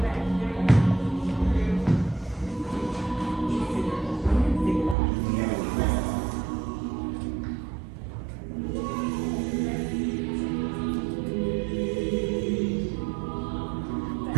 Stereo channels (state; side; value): drops out; left; at 5.0 s